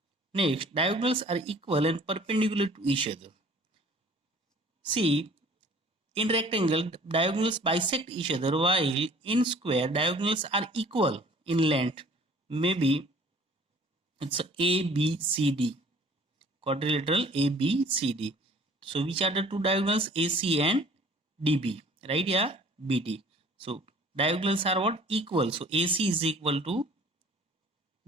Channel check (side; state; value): both; normal; correlation 0.51